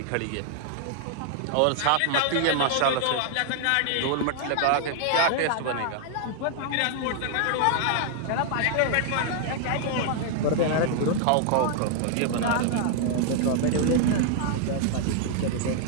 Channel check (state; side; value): different; both; correlation 0.00